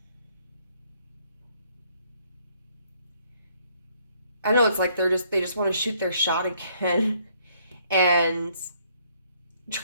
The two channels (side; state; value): both; inverted; correlation -0.67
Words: I know it's like they just want to shoot their shot again and